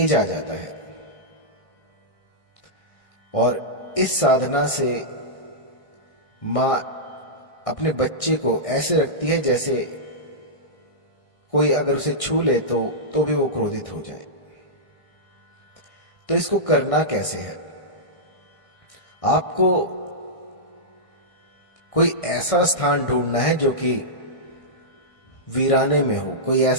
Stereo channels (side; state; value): right; late; 1.6 ms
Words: आ जाता है और इस साधना से मां अपने बच्चे को ऐसे रखती है जैसे कोई अगर उसे छू ले तो भी वो क्रोधित हो जाए। तो इसको करना कैसे है? आपको कोई ऐसा स्थान ढूंढना है जो कि वीराने में हो, कोई